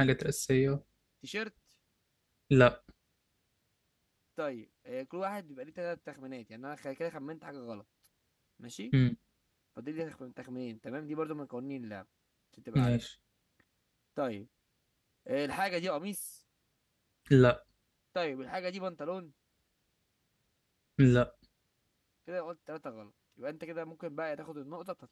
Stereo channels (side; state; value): both; identical; correlation 1.00